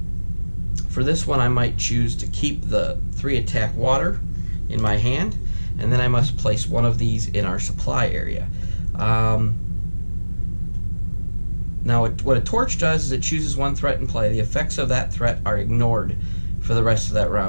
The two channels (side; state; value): both; inverted; correlation -1.00